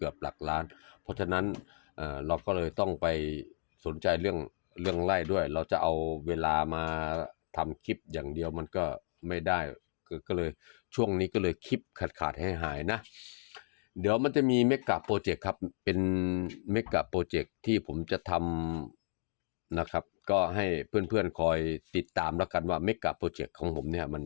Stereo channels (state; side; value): silent; right; 55 dB below the other